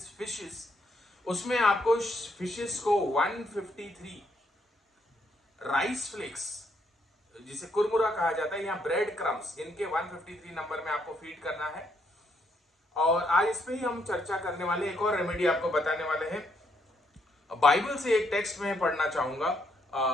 fishes, उसमें आपको फिशेस को 153 राइस फ्लेक्स, जिसे कुरमुरा कहा जाता है, या ब्रेड क्रम्स, इनके 153 नंबर में आपको फीड करना है. और आज इस पे ही हम चर्चा करने वाले, एक और रेमेडी आपको बताने वाले हैं. बाइबल से एक टेक्स्ट में पढ़ना चाहूंगा.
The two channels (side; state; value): both; normal; correlation 0.74